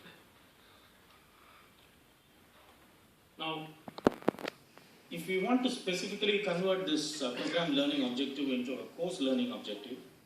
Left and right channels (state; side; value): identical; both; correlation 1.00